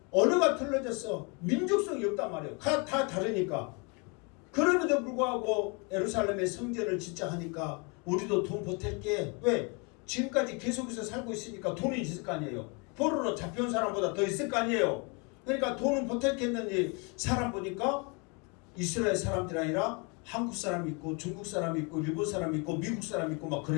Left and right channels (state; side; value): quieter; right; 32.1 dB